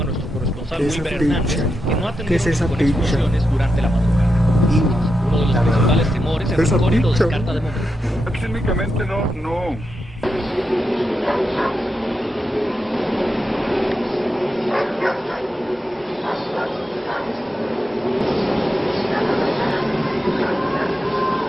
a nuestro corresponsal Wilber Hernández que no ha tenido explosiones durante la madrugada. Uno de los principales temores es el lo descarta de momento. Técnicamente no.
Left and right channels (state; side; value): normal; both; correlation 0.87